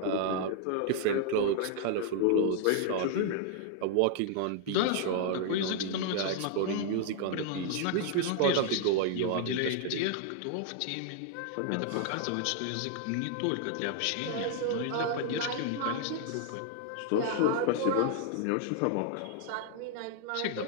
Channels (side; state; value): both; different; correlation 0.00